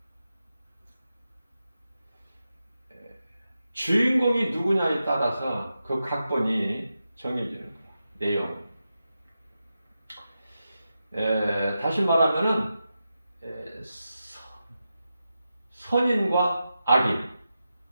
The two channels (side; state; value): both; inverted; correlation -0.90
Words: 주인공이 누구냐에 따라서 그 각본이 정해지는 거야. 내용. 다시 말하면은 선인과 악인.